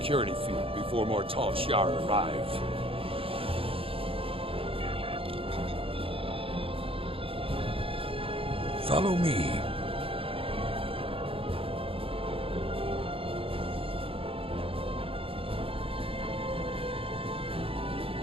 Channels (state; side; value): late; left; 0.27 ms